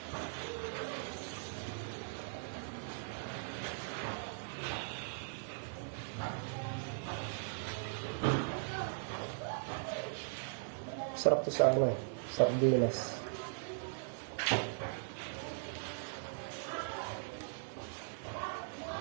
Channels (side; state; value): left; silent; digital silence